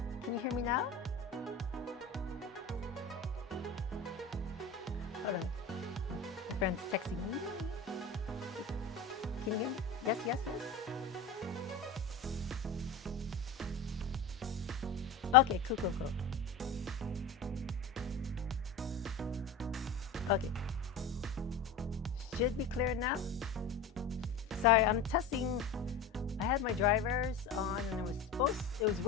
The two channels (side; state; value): right; quieter; 4.5 dB